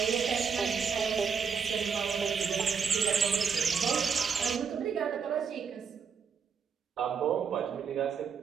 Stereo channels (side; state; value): left; quieter; 6.2 dB